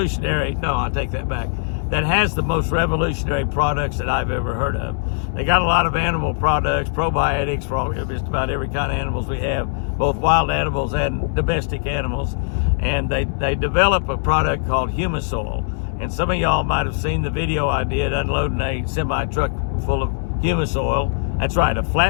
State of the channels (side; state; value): right; silent; 65 dB below the other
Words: No, I take that back. That has the most revolutionary products that I've ever heard of. They got a lot of animal products, probiotics for just about every kind of animals we have, both wild animals and domestic animals. And they develop a product called Humisoil. And some of y'all might have seen the video I did unloading a semi-truck full of Humisoil. That's right, a